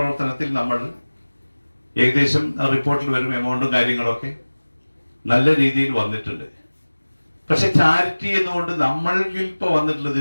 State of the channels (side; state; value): both; inverted; correlation -1.00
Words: നമ്മൾ ഏകദേശം റിപ്പോർട്ടിൽ വരും എമൗണ്ടും കാര്യങ്ങളൊക്കെ നല്ല രീതിയിൽ വന്നിട്ടുണ്ട്. പക്ഷെ ചാരിറ്റി എന്നുകൊണ്ട് നമ്മളിൽ ഇപ്പോൾ